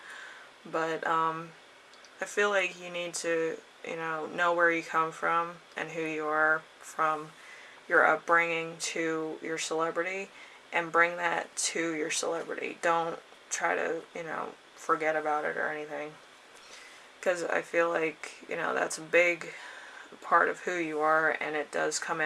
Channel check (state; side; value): identical; both; correlation 1.00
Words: But I feel like you need to, know where you come from and who you are from your upbringing to your celebrity, and bring that to your celebrity. Don't try to, forget about it or anything. Because I feel like, that's a big part of who you are, and it does come